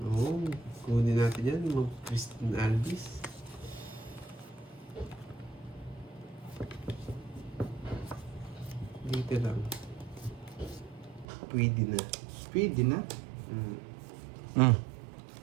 Oo, kunin natin yan. Mga Christine Alvis. Dito lang. Pwede na. Pwede na. Mm.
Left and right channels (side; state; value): left; drops out; at 11.2 s